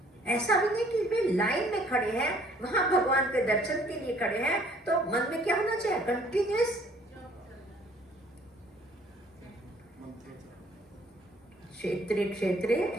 ऐसा भी नहीं कि वे लाइन में खड़े हैं, वहां भगवान के दर्शन के लिए खड़े हैं, तो मन में क्या होना चाहिए, कंटिन्यूअस। क्षेत्रे क्षेत्रे,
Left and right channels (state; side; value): normal; both; correlation 0.59